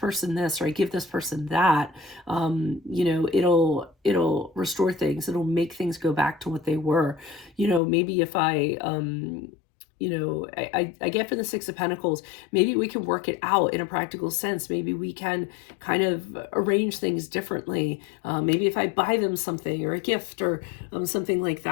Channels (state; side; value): drops out; right; at 7.8 s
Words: this or I give this person that, you know, it'll restore things. It'll make things go back to what they were. You know, maybe if I, you know, I get for the Six of Pentacles, maybe we can work it out in a practical sense. Maybe we can kind of arrange things differently. Maybe if I buy them something or a gift or something like